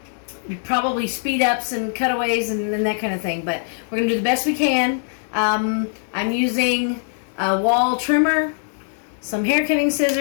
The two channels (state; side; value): silent; right; digital silence